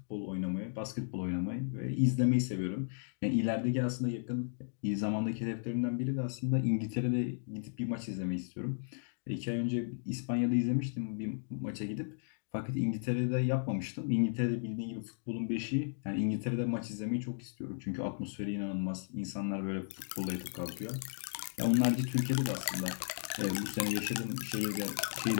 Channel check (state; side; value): silent; right; digital silence